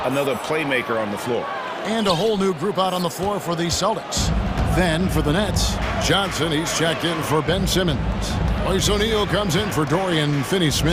another playmaker on the floor. And a whole new group out on the floor for the Celtics. Then for the Nets, Johnson, he's checked in for Ben Simmons. Royce O'Neal comes in for Dorian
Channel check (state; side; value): identical; both; correlation 1.00